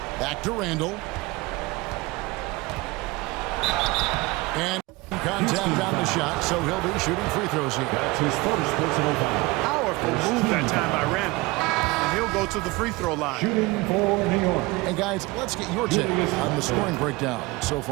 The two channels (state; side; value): quieter; left; 22.8 dB